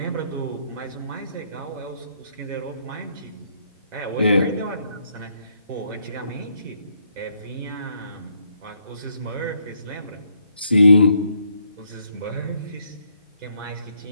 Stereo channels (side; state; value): both; inverted; correlation -0.73